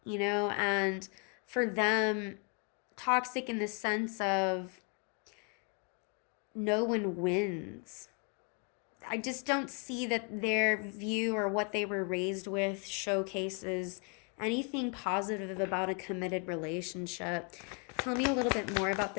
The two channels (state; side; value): quieter; right; 35.8 dB